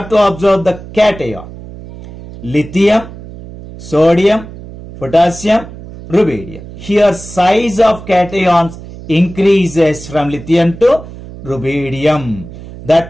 to observe the cation. Lithium, sodium, potassium, rubidium. Here size of cations increases from lithium to rubidium.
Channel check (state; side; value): noise; right; hum, 15 dB below the sound